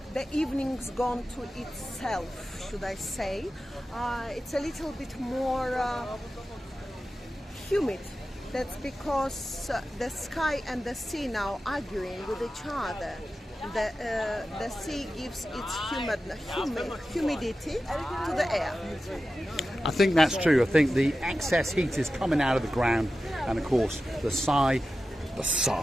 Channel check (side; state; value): both; normal; correlation 0.93